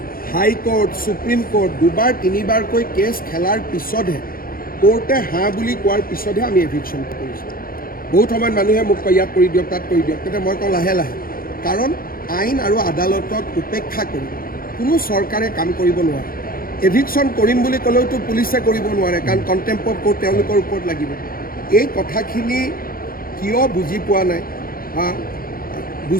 হাইকোৰ্ট, সুপ্ৰিম কোৰ্ট দুবাৰ তিনিবাৰকৈ কেছ খেলাৰ পিছতহে, কোৰ্টে হাঁ বুলি কোৱাৰ পিছতহে আমি এভিকশ্যন কৰিছোঁ। বহুত সময়ত মানুহে মোক কয় ইয়াত কৰি দিয়ক, তাত কৰি দিয়ক, তেতিয়া মই কওঁ লাহে লাহে, কাৰণ আইন আৰু আদালতক উপেক্ষা কৰি কোনো চৰকাৰে কাম কৰিব নোৱাৰে। এভিকশ্যন কৰিম বুলি ক'লেওতো পুলিচে কৰিব নোৱাৰে, কাৰণ কণ্টেম্প অফ কোৰ্ট তেওঁলোকৰ ওপৰত লাগিব। এই কথাখিনি কিয় বুজি পোৱা নাই বা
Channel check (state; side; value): late; right; 0.42 ms